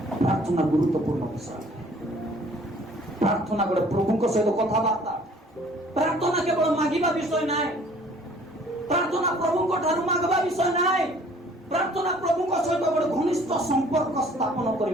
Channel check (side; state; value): both; normal; correlation 0.55